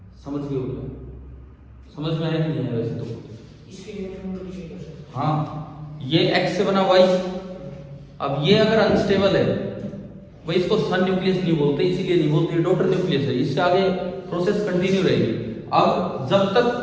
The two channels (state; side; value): identical; both; correlation 1.00